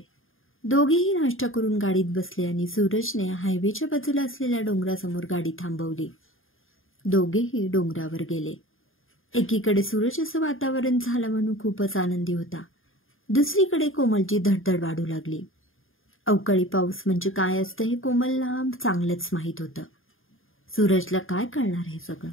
दोघेही नाश्ता करून गाडीत बसले आणि सूरजने हायवेच्या बाजूला असलेल्या डोंगरासमोर गाडी थांबवली. दोघेही डोंगरावर गेले. एकीकडे सूरज असं वातावरण झालं म्हणून खूपच आनंदी होता. दुसरीकडे कोमलची धडधड वाढू लागली. अवकाळी पाऊस म्हणजे काय असतं हे कोमलला चांगलंच माहीत होतं. सूरजला काय कळणार हे सगळं?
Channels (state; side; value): late; right; 0.59 ms